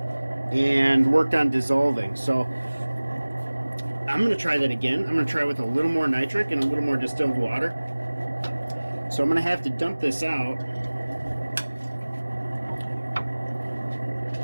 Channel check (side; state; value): both; inverted; correlation -1.00